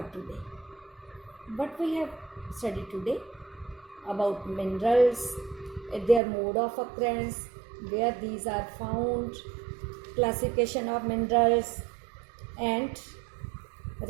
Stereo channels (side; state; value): left; drops out; at 6.2 s